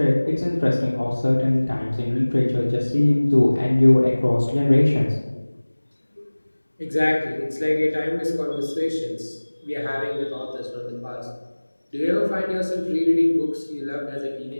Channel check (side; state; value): both; inverted; correlation -1.00